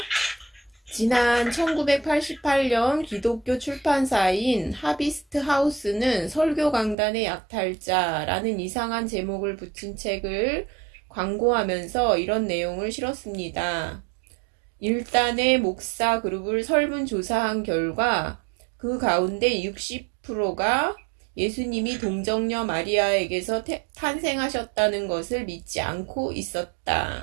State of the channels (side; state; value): left; drops out; at 7.0 s